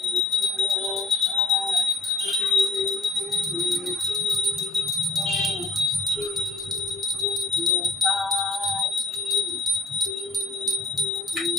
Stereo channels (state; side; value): quieter; right; 3.2 dB